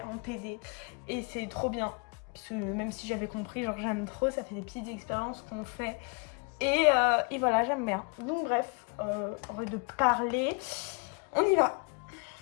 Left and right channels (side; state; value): right; quieter; 34.6 dB